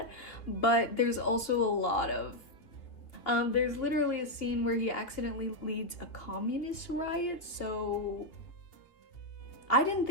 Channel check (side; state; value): right; late; 2.6 ms